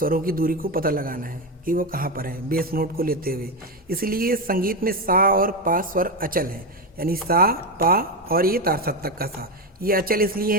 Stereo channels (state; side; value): normal; both; correlation 0.12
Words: की दूरी को पता लगाना है कि वो कहाँ पर है बेस नोट को लेते हुए। इसलिए संगीत में सा और पा स्वर अचल है, यानी सा, पा और ये तार सप्तक का सा, ये अचल इसलिए